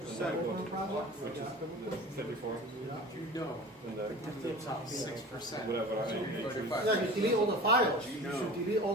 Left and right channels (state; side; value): normal; both; correlation 0.37